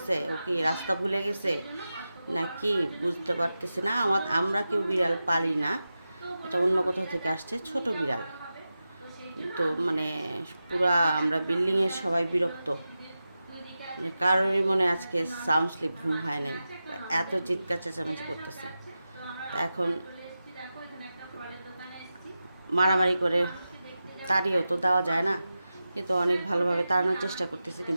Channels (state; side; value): inverted; both; correlation -0.92